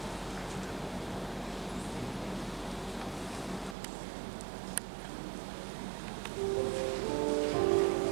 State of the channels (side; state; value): left; drops out; at 3.8 s